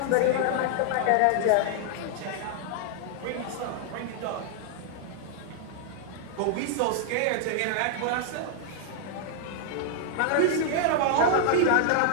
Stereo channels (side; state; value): both; different; correlation 0.00